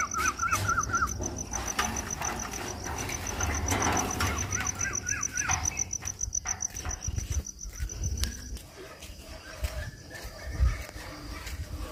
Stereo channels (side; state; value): both; identical; correlation 1.00